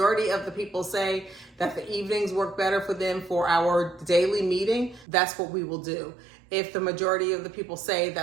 of the people say that the evenings work better for them for our daily meeting, that's what we will do. If the majority of the people say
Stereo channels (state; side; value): drops out; left; at 5.1 s